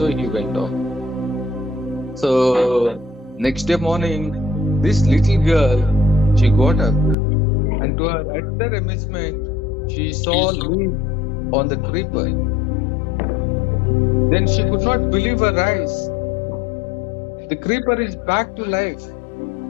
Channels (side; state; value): right; drops out; at 7.2 s